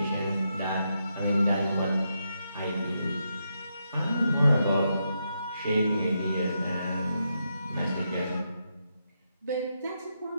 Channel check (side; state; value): both; inverted; correlation -0.82